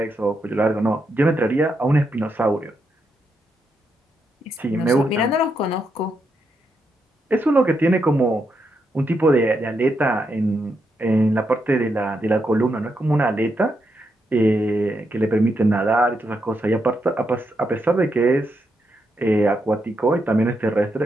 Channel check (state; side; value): normal; both; correlation 0.82